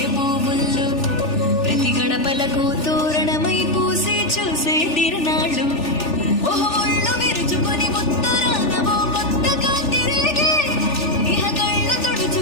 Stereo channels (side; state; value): right; late; 3.4 ms